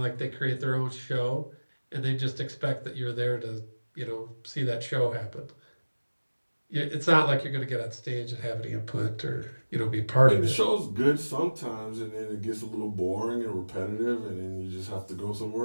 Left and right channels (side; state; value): both; inverted; correlation -1.00